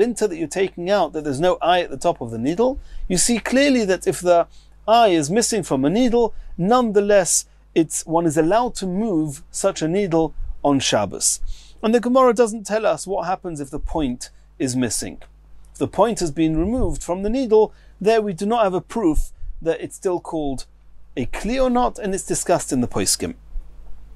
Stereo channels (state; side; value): identical; both; correlation 1.00